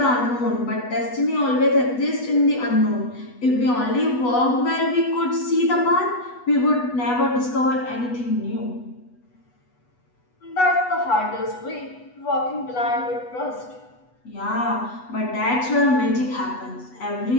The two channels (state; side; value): late; right; 8.1 ms